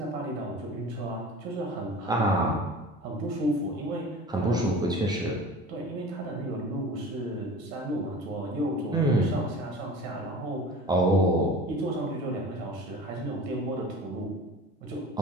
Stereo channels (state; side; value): normal; both; correlation 0.38